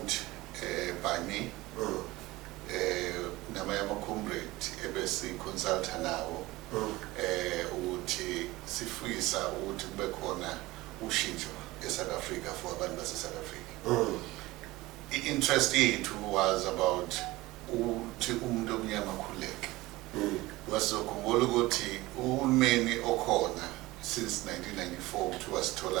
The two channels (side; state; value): left; quieter; 19.5 dB